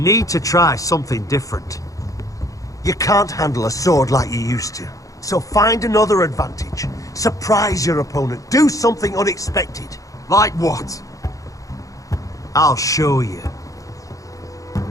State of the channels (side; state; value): right; late; 0.16 ms